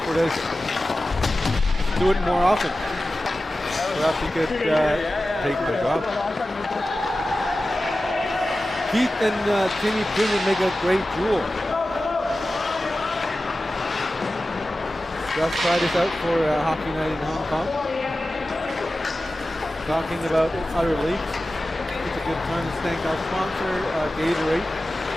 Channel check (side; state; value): both; normal; correlation 0.95